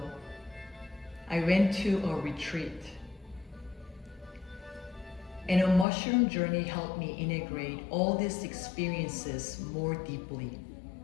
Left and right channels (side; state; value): right; drops out; at 5.9 s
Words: I went to a retreat, and a mushroom journey helped me integrate all these experiences more deeply.